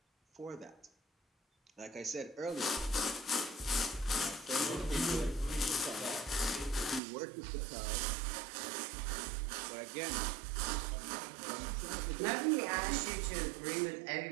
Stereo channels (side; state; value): left; drops out; at 7.0 s